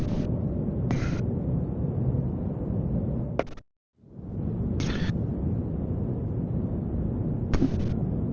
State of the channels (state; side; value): identical; both; correlation 1.00